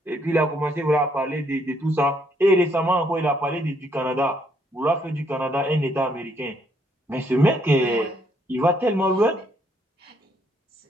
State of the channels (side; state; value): both; normal; correlation 0.70